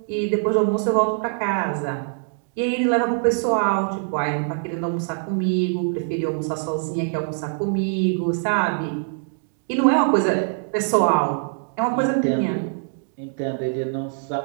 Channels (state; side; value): silent; left; digital silence